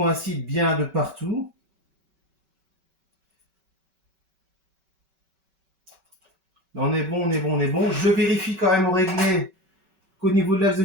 bien de partout. Là, on est bon, on est bon, on est bon. Je vérifie quand même au réglé qu'au niveau de l'axe de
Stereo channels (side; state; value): left; late; 5.3 ms